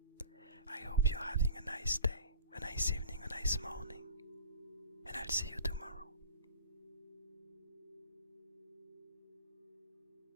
I hope you're having a nice day, a nice evening, a nice morning, and I'll see you tomorrow.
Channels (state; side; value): inverted; both; correlation -0.41